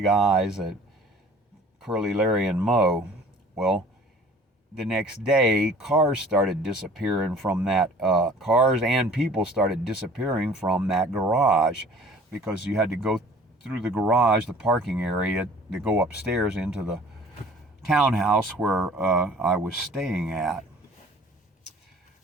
eyes at Curly, Larry, and Moe. Well, the next day, cars started disappearing from that, cars and people started disappearing from that garage, because you had to go through the garage, the parking area, to go upstairs into the townhouse where I was staying at.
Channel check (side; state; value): both; normal; correlation 0.50